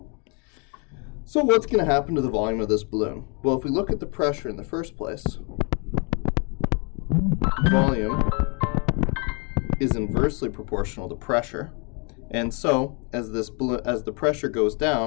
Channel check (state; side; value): quieter; right; 34.5 dB